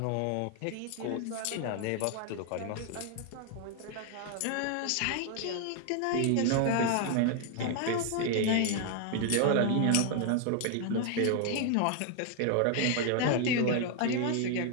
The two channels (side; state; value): both; different; correlation 0.00